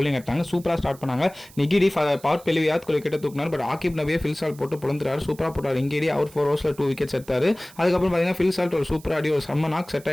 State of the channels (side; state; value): right; noise; hiss, 23 dB below the sound